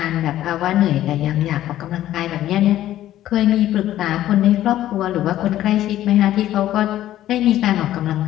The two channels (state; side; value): quieter; right; 13.2 dB